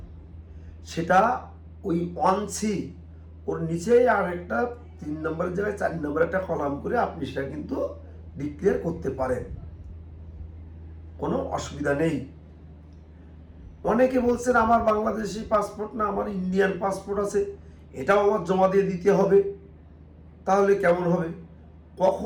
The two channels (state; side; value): identical; both; correlation 1.00